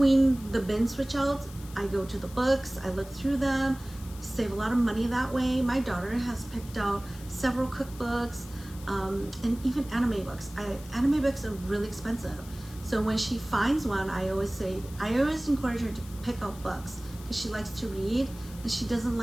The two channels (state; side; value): noise; left; hiss, 19 dB below the sound